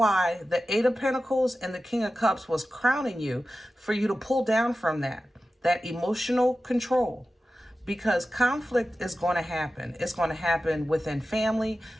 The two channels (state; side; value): normal; both; correlation 0.94